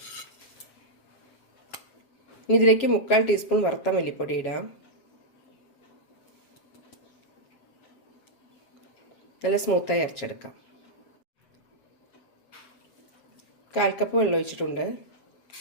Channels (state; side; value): late; right; 7.4 ms